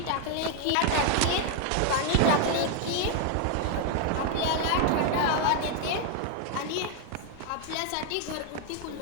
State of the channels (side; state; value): both; different; correlation 0.01